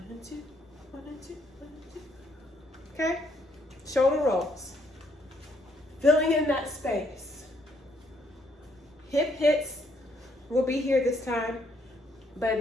and 2, 1 and 2, 1 and 2. Okay, shoulder rolls, filling in that space. Hip hits will be here this time, but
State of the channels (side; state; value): both; normal; correlation 0.71